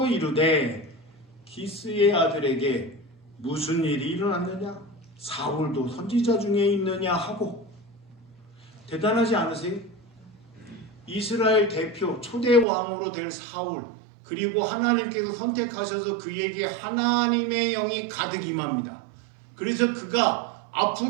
이르되 기스의 아들에게 무슨 일이 일어났느냐? 사울도 선지자 중에 있느냐 하고. 대단하지 않으세요? 이스라엘 대표 초대 왕으로 될 사울, 그리고 하나님께서 선택하셔서 그에게 하나님의 영이 가득 임합니다. 그래서 그가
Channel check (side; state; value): left; drops out; at 12.7 s